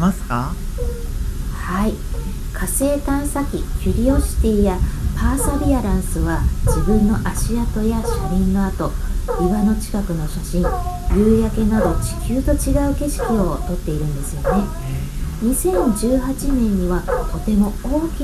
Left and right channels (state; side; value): identical; both; correlation 1.00